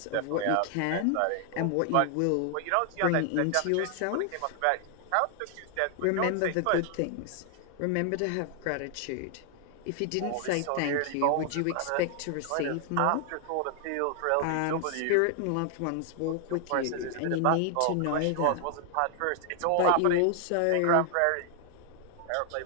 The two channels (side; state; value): both; different; correlation 0.00